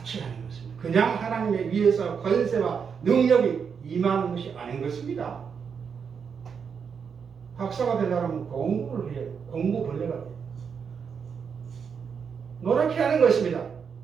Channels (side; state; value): left; quieter; 6.5 dB